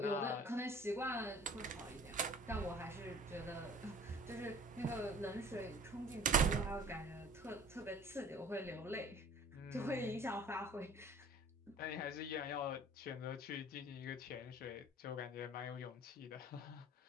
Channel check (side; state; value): both; normal; correlation 0.47